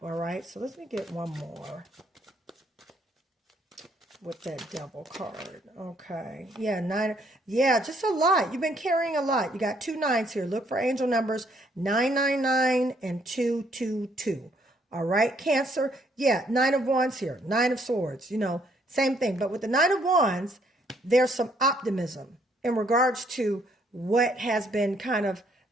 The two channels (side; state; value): both; normal; correlation 0.68